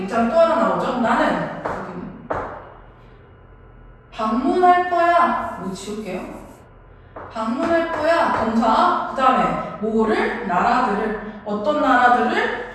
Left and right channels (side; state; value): both; identical; correlation 1.00